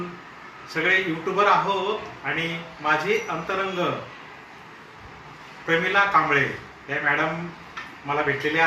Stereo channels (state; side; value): identical; both; correlation 1.00